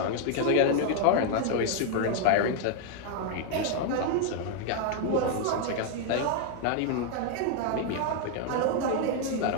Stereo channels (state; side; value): different; both; correlation 0.00